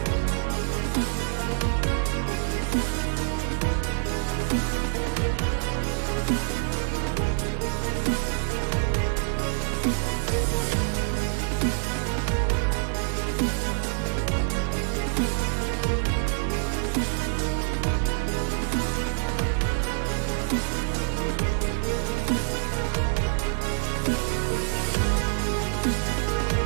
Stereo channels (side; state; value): left; silent; digital silence